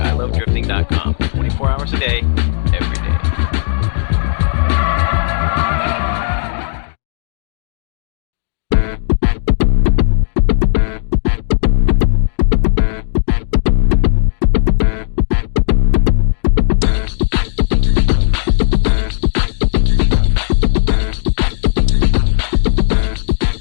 24 hours a day, every day.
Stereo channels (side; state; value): right; silent; digital silence